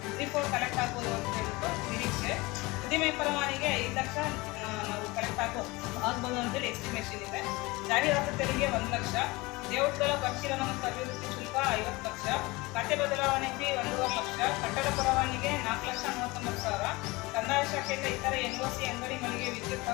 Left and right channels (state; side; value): quieter; right; 22.9 dB